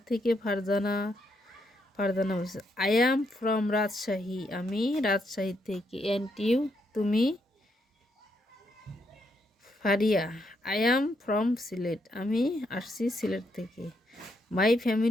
থেকে ফারজানা? ফারজানা বলছে আই অ্যাম ফ্রম রাজশাহী, আমি রাজশাহী থেকে। অ্যান্ড ইউ, তুমি? Faria, I am from Sylhet, আমি আসছি সিলেট থেকে। My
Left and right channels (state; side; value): normal; both; correlation 0.77